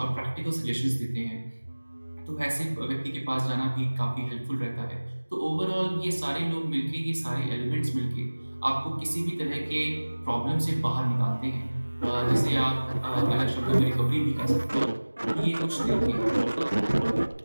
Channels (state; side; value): inverted; both; correlation -1.00